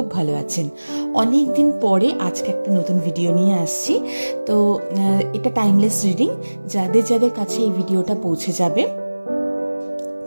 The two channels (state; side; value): inverted; both; correlation -1.00